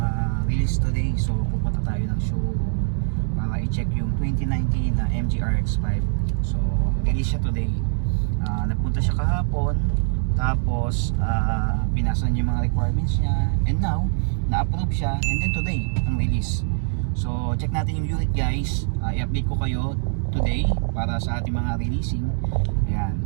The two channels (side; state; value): left; silent; digital silence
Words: release today. So pupunta tayo ng showroom para i-check yung 2019 na MG RX-5. So release siya today. Nagpunta siya kahapon. Tapos pinasa niya yung mga requirements niya. And now, na-approve siya. And then today, ang release. So check natin yung unit guys. I-update ko kayo today para sa ating mga releasing. Ayan.